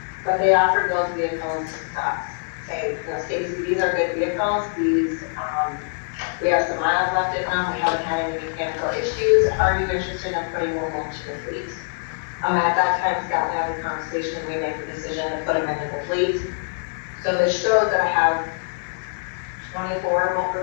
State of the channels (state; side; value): silent; right; 63 dB below the other